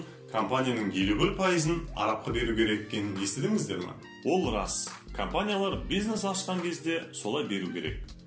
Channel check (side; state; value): both; identical; correlation 1.00